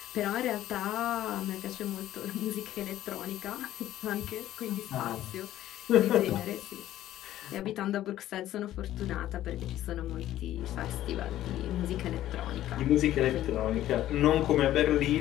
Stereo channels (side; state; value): right; quieter; 13.4 dB